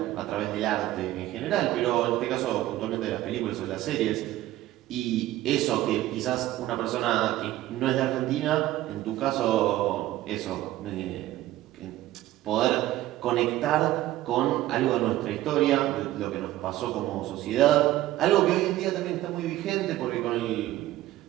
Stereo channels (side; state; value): left; quieter; 15.1 dB